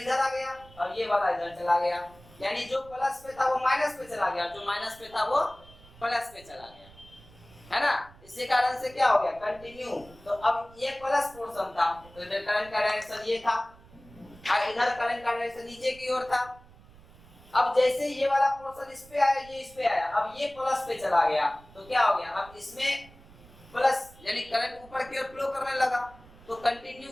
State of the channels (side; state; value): right; noise; rumble, 23 dB below the sound